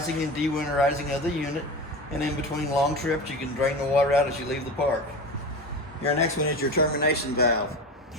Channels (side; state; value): both; normal; correlation 0.28